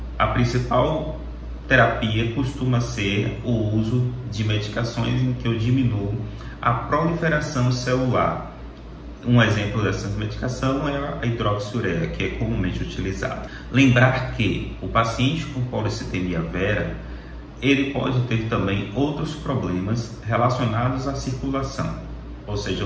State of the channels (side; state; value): both; identical; correlation 1.00